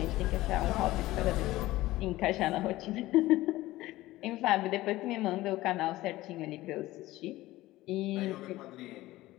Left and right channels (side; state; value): right; quieter; 17.3 dB